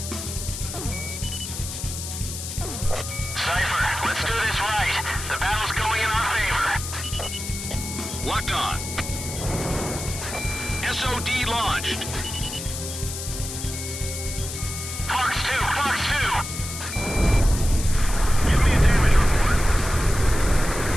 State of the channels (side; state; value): left; noise; hiss, 7 dB below the sound